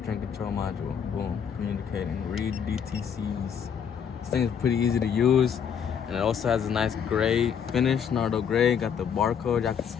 control module. Boom. Communicating. Read DTCs. This thing is pretty easy to use. And it also has a nice gray finish, Nardo gray. Got the barcode. Y'all can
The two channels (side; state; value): right; quieter; 7.6 dB